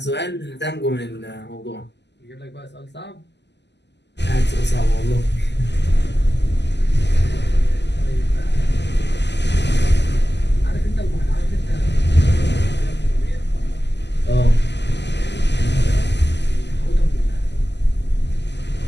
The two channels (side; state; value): right; late; 0.50 ms